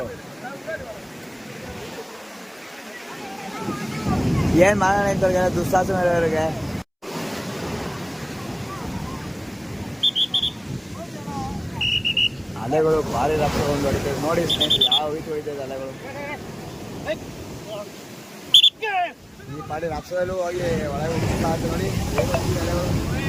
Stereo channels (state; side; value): identical; both; correlation 1.00